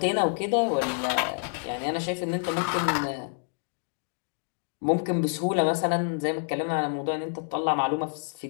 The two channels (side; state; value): right; silent; digital silence